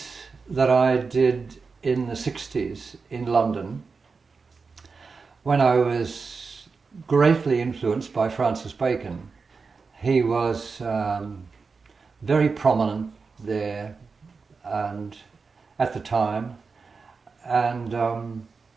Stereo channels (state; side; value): quieter; left; 4.7 dB